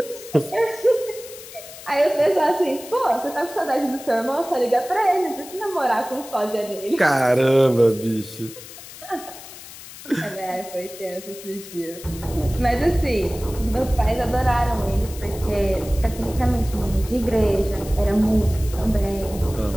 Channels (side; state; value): left; noise; hiss, 15 dB below the sound